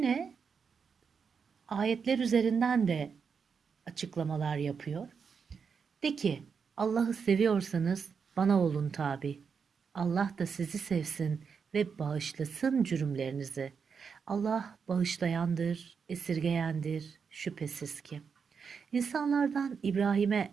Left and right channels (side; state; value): left; quieter; 6.1 dB